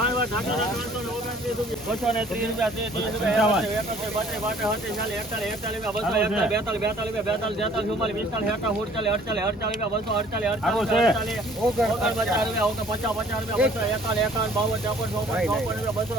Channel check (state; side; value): normal; both; correlation 0.55